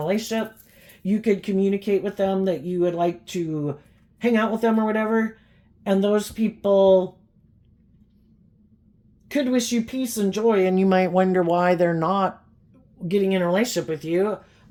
you could communicate with them that you would like to hang out with them or whatever, and those people could wish you peace and joy, and you might wonder why they're not getting in a relationship with you.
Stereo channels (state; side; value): identical; both; correlation 1.00